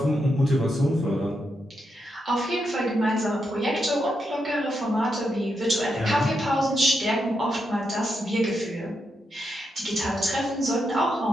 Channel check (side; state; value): both; normal; correlation 0.83